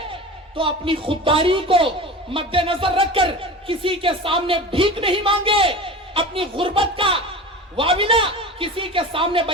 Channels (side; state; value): both; normal; correlation 0.32